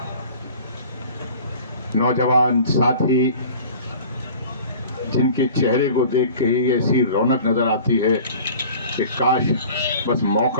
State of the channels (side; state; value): both; inverted; correlation -0.45